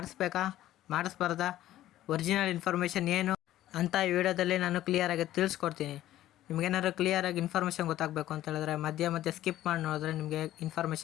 ಮಾಡಿಸ್ಬಾರ್ದಾ, ಒರಿಜಿನಲ್ ಇನ್ಫಾರ್ಮೇಷನ್ ಏನು ಅಂತ ಈ ವಿಡಿಯೋದಲ್ಲಿ ನಾನು ಕ್ಲಿಯರಾಗಿ ತಿಳಿಸ್ಕೊಡ್ತೀನಿ. ನಿಮಗೇನಾದ್ರು ಕ್ಲಿಯರಾಗಿ ಇನ್ಫಾರ್ಮೇಷನ್ ಗೊತ್ತಾಗಬೇಕು ಅಂತ ಹೇಳಿದ್ರೆ ಮಧ್ಯೆ ಸ್ಕಿಪ್ ಮಾಡಿ ನೋಡಿದ್ರೆ ನಿಮಗೆ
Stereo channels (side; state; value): right; quieter; 13.7 dB